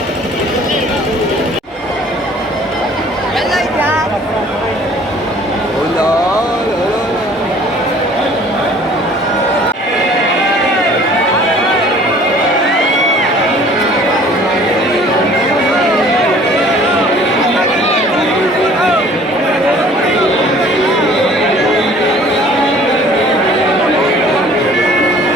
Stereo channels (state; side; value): normal; both; correlation 0.52